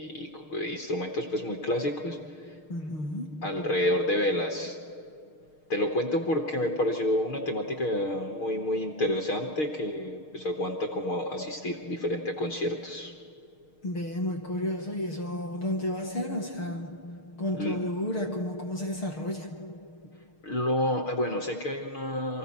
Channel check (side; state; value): right; late; 6.5 ms